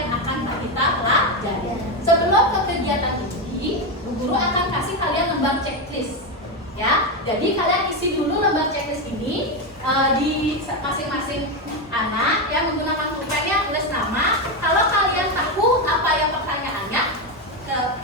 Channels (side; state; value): both; normal; correlation 0.10